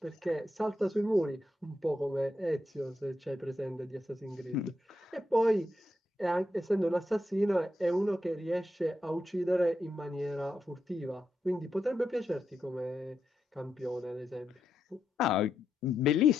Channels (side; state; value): both; normal; correlation 0.84